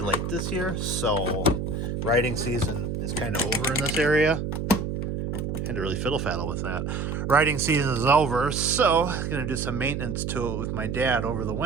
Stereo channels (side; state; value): right; noise; hum, 3 dB below the sound